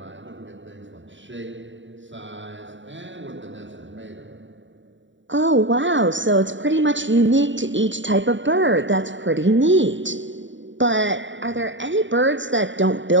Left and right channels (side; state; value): left; late; 0.54 ms